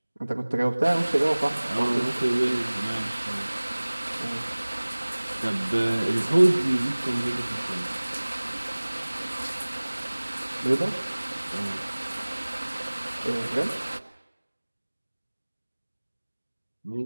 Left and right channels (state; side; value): inverted; both; correlation -1.00